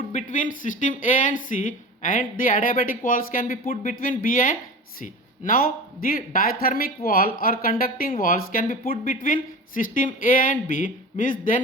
between system A and C, and the adiabatic walls can be put between B and C. Now the diathermic wall or conducting walls can be put between system A and B, means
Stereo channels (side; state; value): both; normal; correlation 0.33